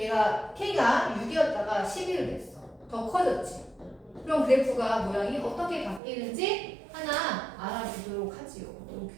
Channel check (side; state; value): left; drops out; at 6.0 s